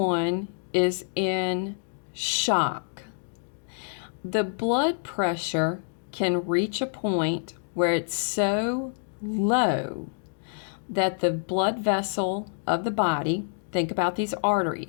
is in shock, the blood pressure can reach a point where it's so low that the blood vessel of the body, think about these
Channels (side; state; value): right; silent; digital silence